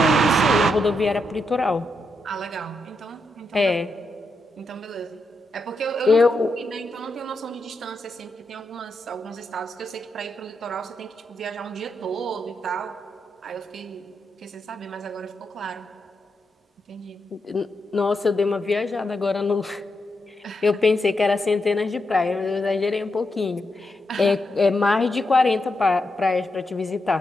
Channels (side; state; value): both; normal; correlation 0.84